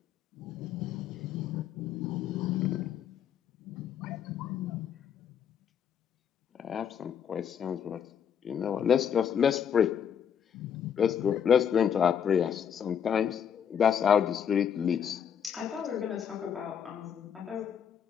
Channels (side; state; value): right; quieter; 8.2 dB